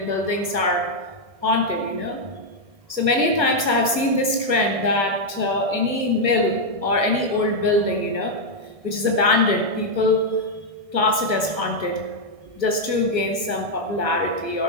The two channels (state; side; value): late; left; 1.4 ms